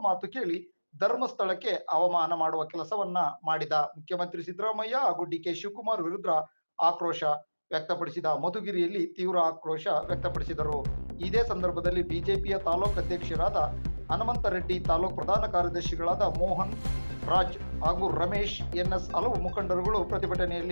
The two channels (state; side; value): inverted; both; correlation -1.00